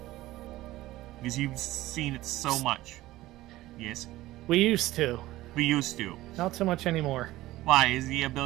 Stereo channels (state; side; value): quieter; left; 16.8 dB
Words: Because you've seen it so much. Yes? We used to. We used to. Not so much anymore. Why? Is the